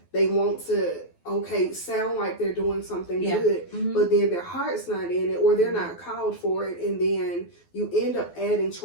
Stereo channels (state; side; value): late; right; 12 ms